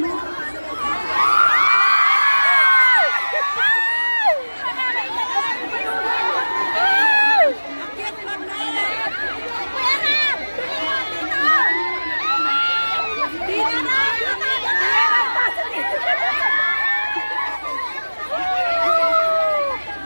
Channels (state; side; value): inverted; both; correlation -1.00